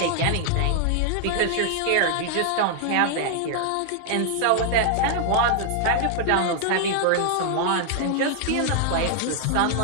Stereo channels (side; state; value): both; different; correlation 0.00